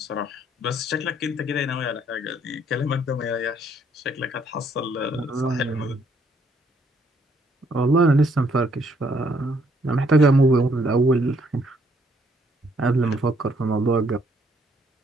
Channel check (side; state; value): both; normal; correlation 0.68